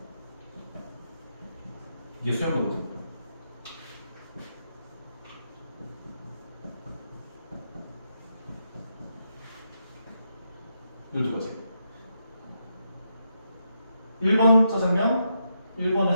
이게 수영도거든. 이 두 가지. 1번 짜장면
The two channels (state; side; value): inverted; both; correlation -0.82